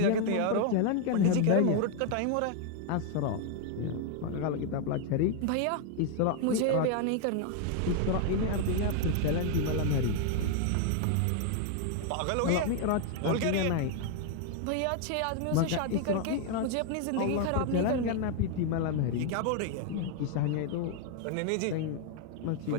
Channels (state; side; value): different; both; correlation 0.00